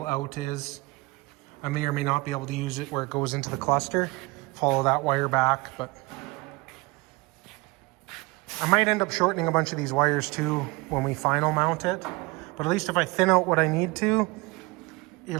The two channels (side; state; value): left; quieter; 24.0 dB